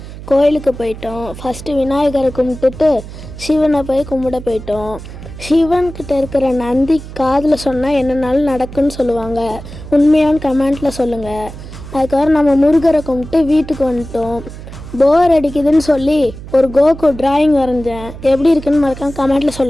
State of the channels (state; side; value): noise; right; hum, 13 dB below the sound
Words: கோயிலுக்கு போயிட்டோம். ஃபஸ்ட்டு விநாயகரை கும்பிட்டுட்டு சிவனை போய் கும்பிட போயிட்டோம். சிவன்கிட்ட இருக்கிற நந்தி காதில் சொன்னால் என்னென்னாலும் நடக்குன்னு சொல்லுவாங்க. உண்மையான கமெண்ட்டில் சொல்லுங்கள். அதுக்கப்புறம் நம்ம முருகரை கும்பிட்டு வீட்டுக்கு வந்துட்டோம். போர் அடிக்குதுன்னு சொல்லி ஒரு கோகு டிராயிங் வரைஞ்சேன். எப்படி இருக்குன்னு மறக்காம கமெண்ட்டில்